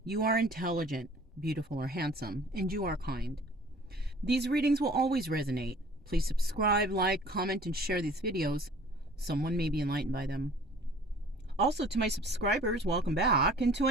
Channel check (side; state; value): both; normal; correlation 0.50